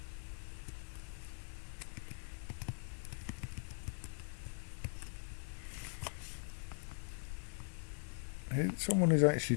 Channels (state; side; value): silent; right; digital silence